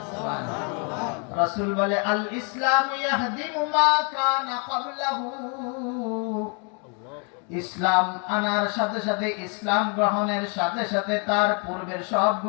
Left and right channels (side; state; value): right; quieter; 37.0 dB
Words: সুবহানাল্লাহ। রাসূল বলে, আল ইসলাম ইয়াহদিমু মা কানা ক্বাবলাহু, ইসলাম আনার সাথে সাথে, ইসলাম গ্রহণের সাথে সাথে তার পূর্বের সব